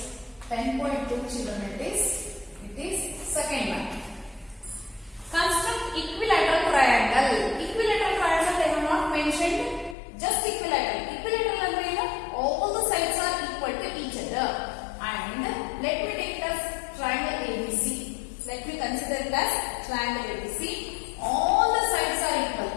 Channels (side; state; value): right; drops out; at 10.0 s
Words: 10.2 children, it is second one. Construct equilateral triangle. Equilateral triangle they have not mentioned, just equilateral. Equilateral ಅಂದ್ರೆ ಏನು? All the sides are equal to each other. And let me take it as triangle ABC. Let me consider it as triangle ABC. All the sides are equal.